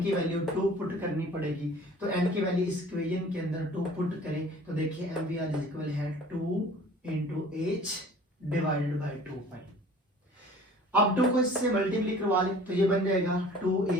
की वैल्यू 2 पुट करनी पड़ेगी। तो n की वैल्यू इस इक्वेशन के अंदर 2 पुट करें तो देखिए MVR इक्वल है 2 × h डिवाइडेड बाय 2π। अब 2 को इससे मल्टीप्लाई करवा लें तो ये बन जाएगा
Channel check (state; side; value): normal; both; correlation 0.48